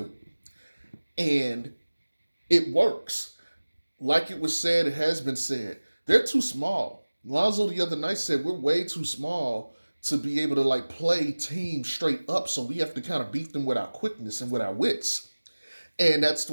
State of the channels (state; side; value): inverted; both; correlation -1.00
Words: And it works. Like it was said, it has been said. They're too small. Lonzo the other night said we're way too small to be able to like play teams straight up, so we have to kind of beat them with our quickness and with our wits. And that's the